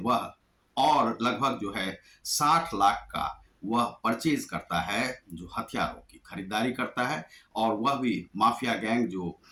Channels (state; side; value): identical; both; correlation 1.00